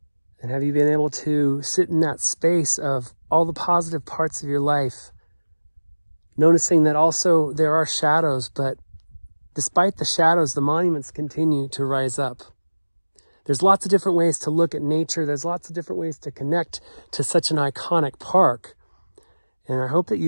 And have you been able to sit in that space of all the positive parts of your life, noticing that also there are shadows, but despite the shadows, the monuments continue to rise up. There's lots of different ways to look at nature. There's lots of different ways to connect to such an iconic park. And I hope that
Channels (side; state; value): both; inverted; correlation -1.00